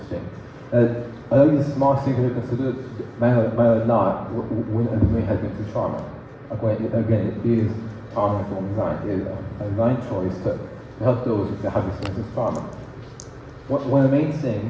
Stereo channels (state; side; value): identical; both; correlation 1.00